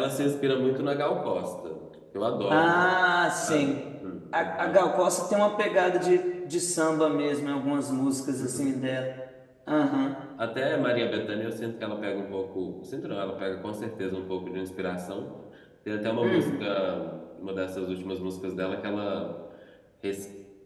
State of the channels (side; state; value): both; identical; correlation 1.00